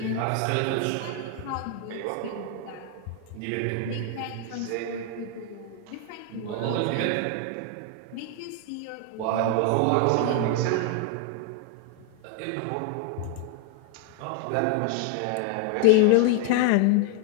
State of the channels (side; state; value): both; different; correlation 0.00